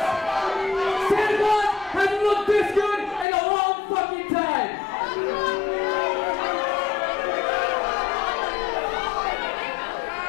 Santa Claus hasn't looked this good in a long fucking time.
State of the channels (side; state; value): right; drops out; at 3.2 s